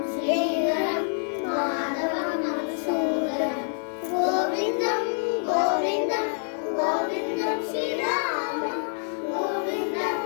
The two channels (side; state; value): right; silent; 60 dB below the other